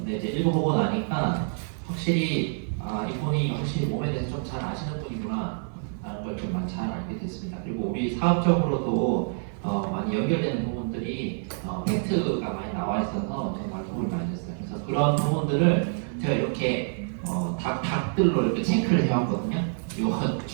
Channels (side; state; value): left; silent; 57 dB below the other